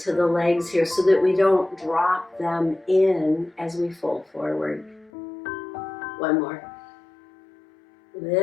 the legs here so that we don't drop them in as we fold forward. One more.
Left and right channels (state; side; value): drops out; right; at 5.1 s